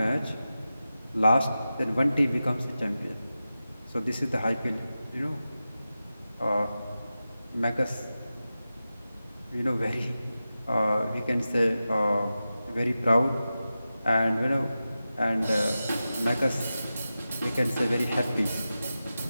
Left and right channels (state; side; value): inverted; both; correlation -0.93